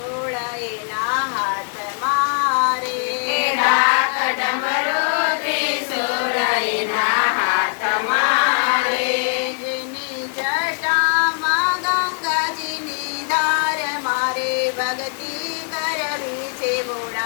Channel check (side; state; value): right; silent; digital silence